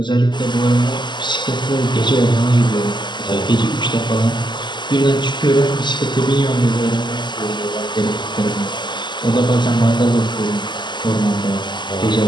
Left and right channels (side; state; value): right; late; 0.21 ms